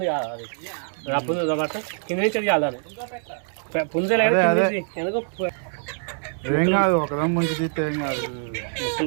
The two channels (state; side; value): silent; left; 62 dB below the other